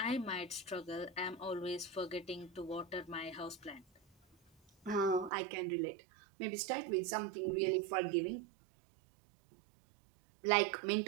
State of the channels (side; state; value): left; drops out; at 5.3 s